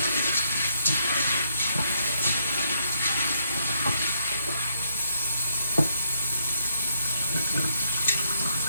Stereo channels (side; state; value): both; inverted; correlation -0.71